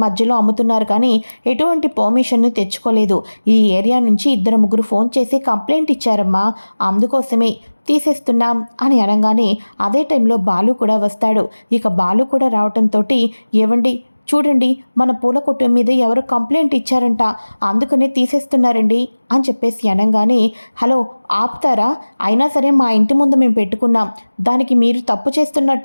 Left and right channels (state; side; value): inverted; both; correlation -1.00